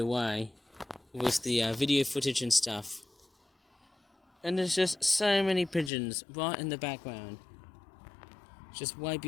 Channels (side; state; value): right; drops out; at 5.9 s